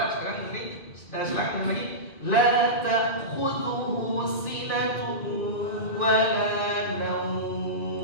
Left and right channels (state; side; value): late; right; 2.4 ms